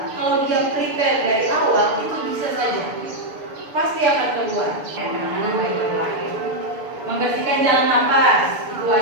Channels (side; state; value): left; late; 6.9 ms